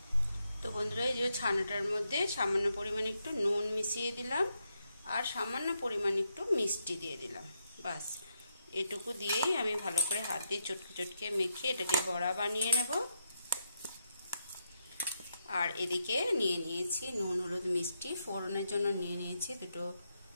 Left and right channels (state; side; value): inverted; both; correlation -0.82